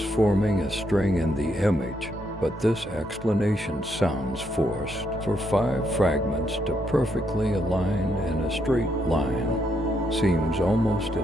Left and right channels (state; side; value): noise; right; hum, 21 dB below the sound